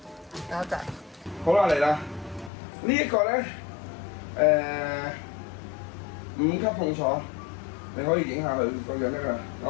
多謝。好啦，嚟啦！呢一個咧，5級痛楚，你可以影下佢個樣得㗎。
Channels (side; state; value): right; drops out; at 2.5 s